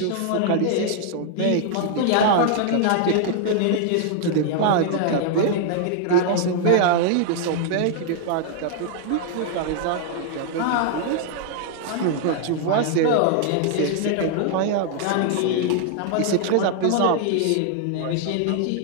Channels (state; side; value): different; both; correlation 0.00